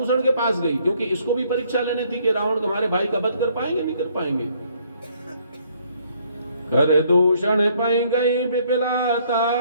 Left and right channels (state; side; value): inverted; both; correlation -0.65